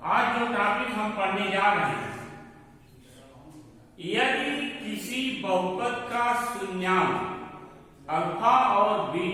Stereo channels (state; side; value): identical; both; correlation 1.00